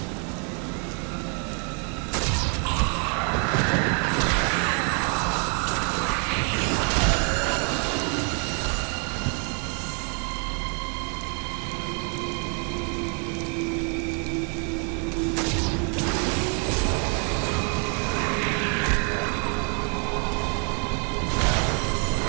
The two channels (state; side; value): quieter; left; 39.3 dB